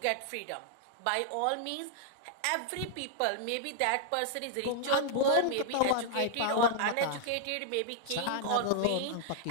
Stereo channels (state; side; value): different; both; correlation -0.01